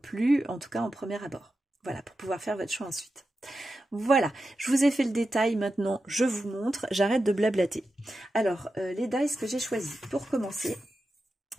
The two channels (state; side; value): normal; both; correlation 0.90